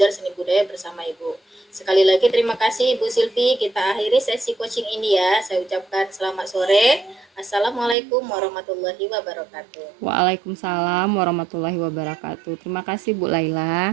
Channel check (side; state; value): left; drops out; at 8.0 s